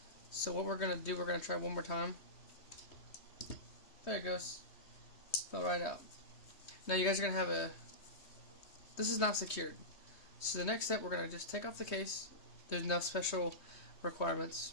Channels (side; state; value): right; late; 3.2 ms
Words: So what we're going to do, we're going to try one more time. There it goes. Fell right out. Now you guys are going to have this is not secured. So the next step, we're going to just take off the case. There's no special requirements.